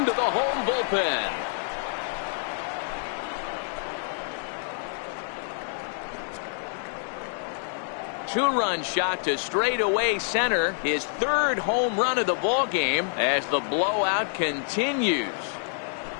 the home bullpen. Two-run shot to straightaway center. His 3rd home run of the ball game as the blowout continues.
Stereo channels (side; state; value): right; silent; digital silence